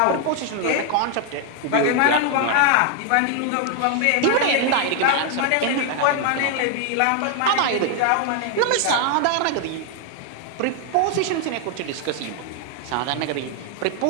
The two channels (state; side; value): different; both; correlation 0.00